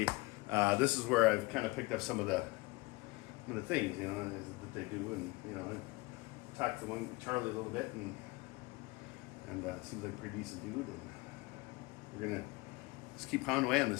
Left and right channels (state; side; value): quieter; right; 23.7 dB